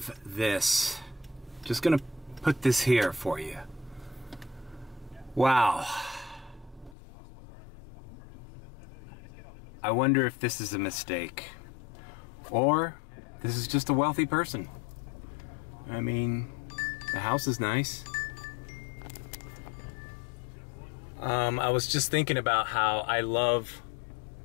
this. Just gonna put this here for you. Wow. I wonder if this is a mistake. Or this is just a wealthy person. I mean, the house is nice. I was just thinking about how I love,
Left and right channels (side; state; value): right; drops out; at 7.0 s